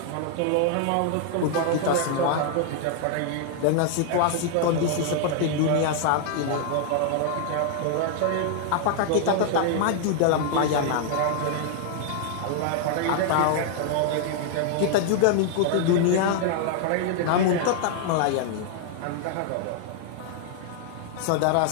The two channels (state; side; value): different; both; correlation 0.00